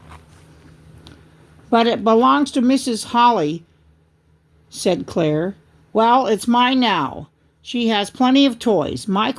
"But it belongs to Mrs. Holly," said Claire. "Well, it's mine now. She has plenty of toys."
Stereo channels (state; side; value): identical; both; correlation 1.00